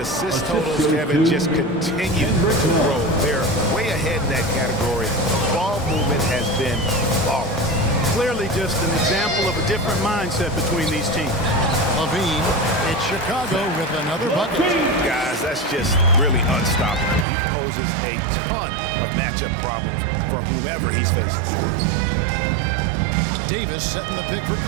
assist totals, Kevin, just continue to grow. They're way ahead in that category. Ball movement has been flawless. Clearly just an example of a different mindset between these teams. Levine, it's Chicago with another bucket. Guys, that's just really unstoppable. He poses a ton of matchup problems for whomever he's facing. Davis setting the pick for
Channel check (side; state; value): left; drops out; at 17.2 s